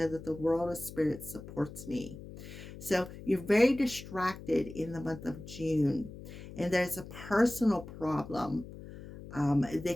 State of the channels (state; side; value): noise; left; hum, 14 dB below the sound